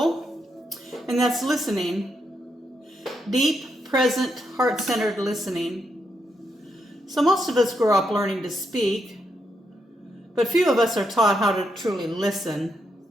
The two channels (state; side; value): normal; both; correlation 0.80